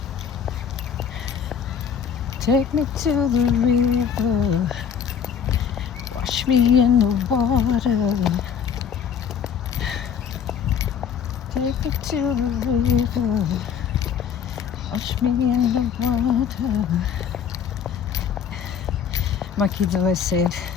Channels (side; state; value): right; quieter; 7.7 dB